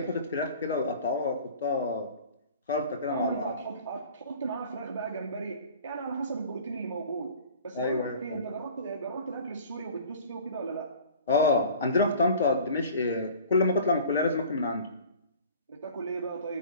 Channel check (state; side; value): inverted; both; correlation -0.45